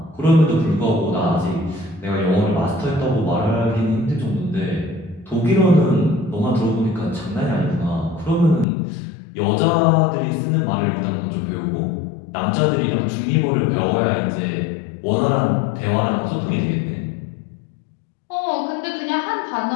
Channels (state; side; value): drops out; right; at 8.7 s